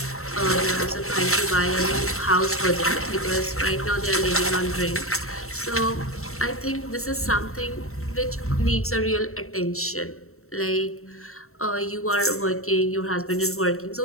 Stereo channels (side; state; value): right; late; 0.63 ms